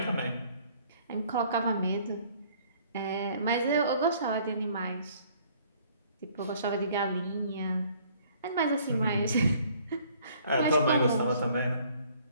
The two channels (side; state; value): both; inverted; correlation -0.58